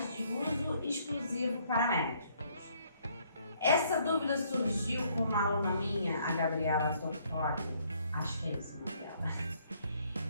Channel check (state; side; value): inverted; both; correlation -0.66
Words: de uso exclusivo para médicos. Essa dúvida surgiu com uma aluna minha, a Gabriela Tortori, acho que é esse o nome dela,